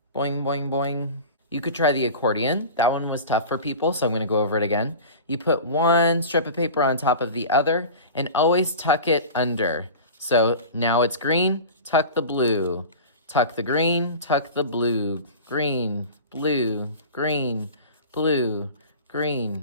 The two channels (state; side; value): inverted; both; correlation -0.35